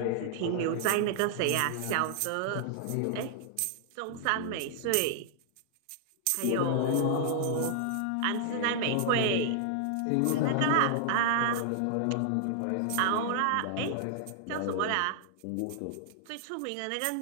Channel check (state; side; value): different; both; correlation -0.01